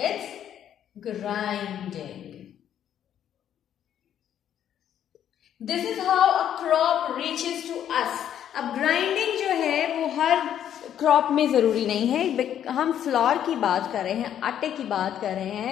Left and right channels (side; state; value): right; quieter; 10.1 dB